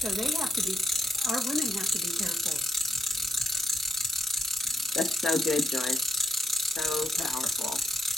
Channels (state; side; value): normal; both; correlation 0.74